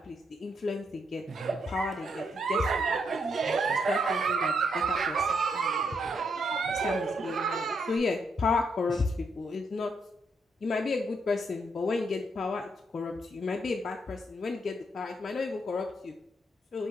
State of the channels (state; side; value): normal; both; correlation 0.77